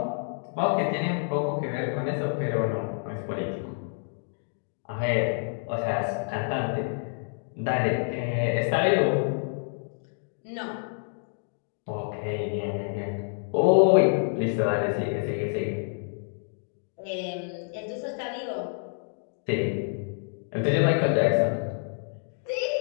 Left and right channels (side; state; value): right; silent; digital silence